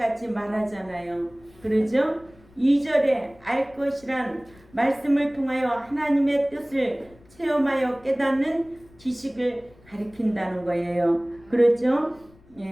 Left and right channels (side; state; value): left; noise; rumble, 27 dB below the sound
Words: 말하잖아요. 그러죠? 2절에 알 것이란 말씀을 통하여 하나님의 뜻을 체험하여 깨닫는 지식을 가리킨다는 거예요. 그렇죠?